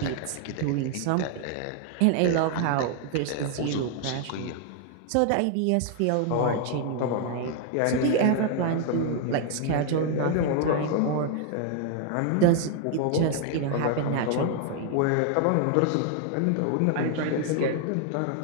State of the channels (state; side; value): different; both; correlation 0.00